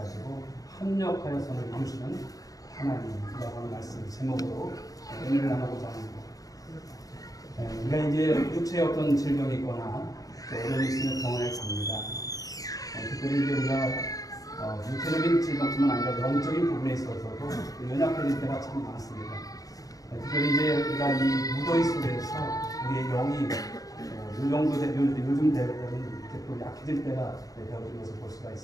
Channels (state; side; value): late; right; 0.17 ms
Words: 합력하여 선을 이루시는 하나님이라고 하는 말씀 제목으로 은혜를 나누고자 합니다. 우리가 이제 육체에 어떤 질병이 있거나 또 어려움이 있으면 병원에 갑니다. 특별히 이제 우리가 육체적인 질병뿐만 아니라 영적인 부분에 있어서도 연약해질 때가 참 많습니다. 특별히 이제 우리가 이 무더위 속에서 우리의 영이 요즘 대부분 이렇게 또 약해질 때가 되어진 것을 볼 수가